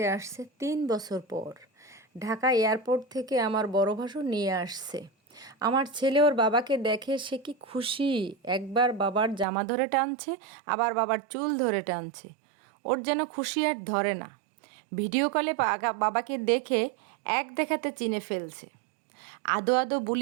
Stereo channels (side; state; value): left; drops out; at 9.5 s